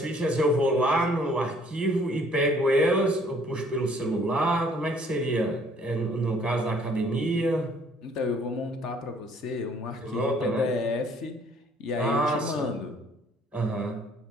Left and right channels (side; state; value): both; normal; correlation 0.60